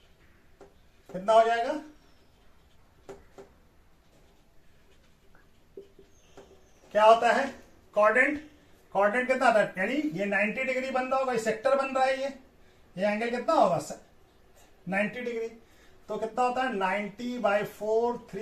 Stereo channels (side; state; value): both; identical; correlation 1.00